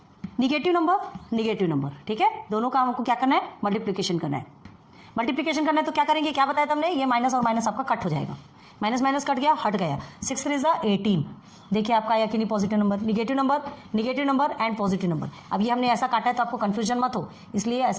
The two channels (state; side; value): identical; both; correlation 1.00